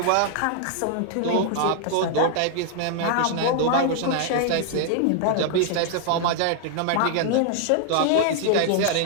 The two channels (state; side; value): different; both; correlation 0.00